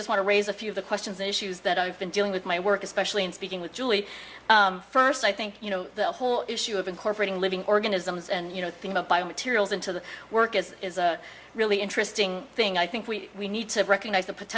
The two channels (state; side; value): identical; both; correlation 1.00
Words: want to raise a few of the questions and issues that I've been dealing with my work, especially in speaking with Julie. First, I think the whole issue of incorporating living organisms and thinking about biomaterials into the work is a really interesting thing. I think we need to recognize the